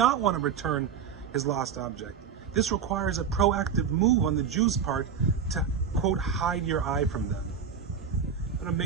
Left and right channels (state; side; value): quieter; left; 7.0 dB